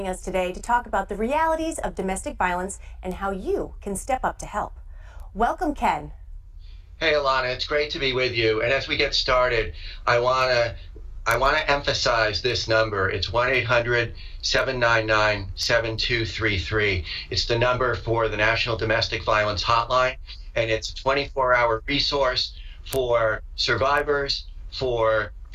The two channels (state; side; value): identical; both; correlation 1.00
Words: us today to talk about the realities of domestic violence and how you can step up to help. Welcome, Ken. Hey, Alana, it's great to be with you. And as we get started, I want to I want to emphasize this number. It's 1-800-799-7233. It's the number for the National Domestic Violence Hotline, and it's a 24-hour resource for survivors, for